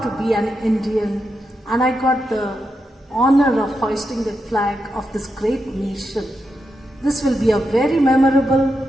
to be an Indian, and I got the honor of hoisting the flag of this great nation. This will be a very memorable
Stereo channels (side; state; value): both; normal; correlation 0.86